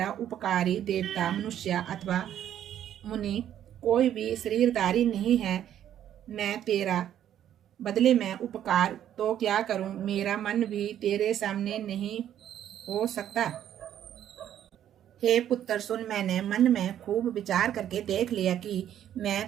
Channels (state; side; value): quieter; left; 10.7 dB